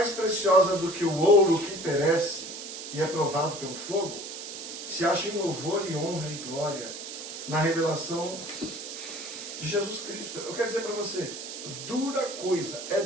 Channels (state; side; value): noise; right; hiss, 9 dB below the sound